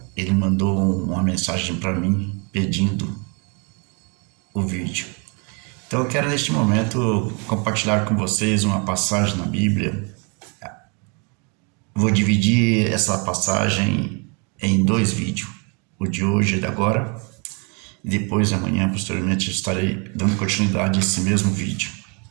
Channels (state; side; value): quieter; left; 34.1 dB